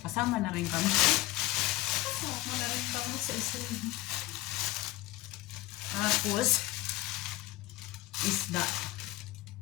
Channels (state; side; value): quieter; right; 17.8 dB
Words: Kasama na rin kami. Kasama na rin kami sa shrimp. Tapos, isda.